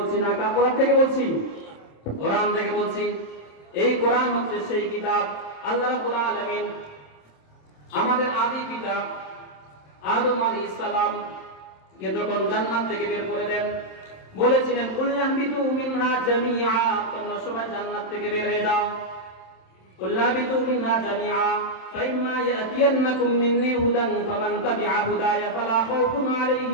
না, কোরআন থেকে বলছি, কোরআন থেকে বলছি। এই কোরআন হচ্ছে সেই কিতাব আল্লাহ রাব্বুল আলামিন আমাদের আদি পিতা আদম আলাইহিস সালাম কে যখন জান্নাত থেকে বের করে দেন, বলেছিলেন কুল্লাহবিতু মিনহা জামিআ, তোমরা সবাই জান্নাত থেকে বের হয়ে যাও। কুল্লাহবিতু মিনহা জামিআ ফাইম্মা ইয়াতিয়ান্নাকুম মিন্নী হুদান ফামান তাবিআ হুদায়া ফালা খাউফুন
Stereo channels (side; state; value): right; late; 27 ms